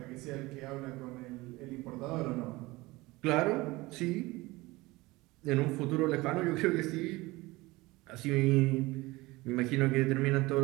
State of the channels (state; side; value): quieter; left; 21.1 dB